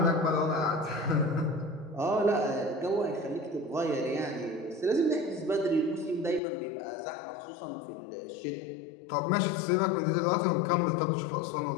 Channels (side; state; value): right; drops out; at 6.4 s